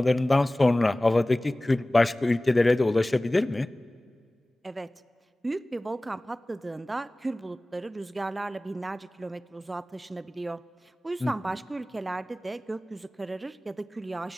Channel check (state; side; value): normal; both; correlation 0.98